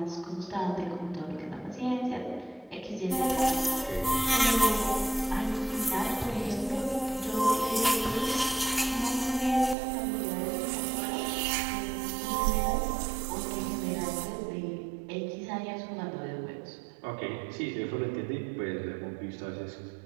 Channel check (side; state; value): left; drops out; at 9.8 s